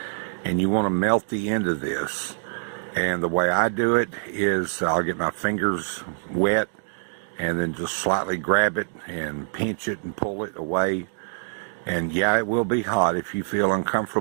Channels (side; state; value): left; silent; digital silence